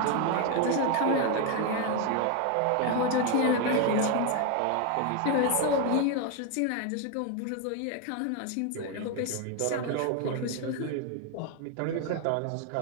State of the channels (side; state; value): both; different; correlation 0.01